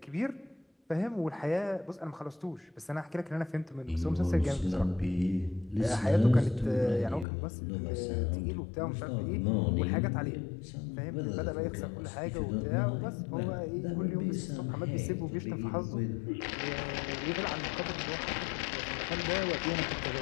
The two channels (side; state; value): right; drops out; at 7.2 s